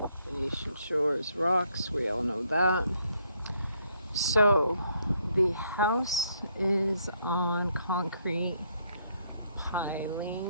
Venetian Shores rocks, we all know that. So the house is on concrete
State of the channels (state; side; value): inverted; both; correlation -0.71